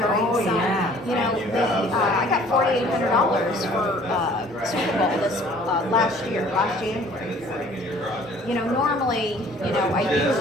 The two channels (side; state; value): both; normal; correlation 0.54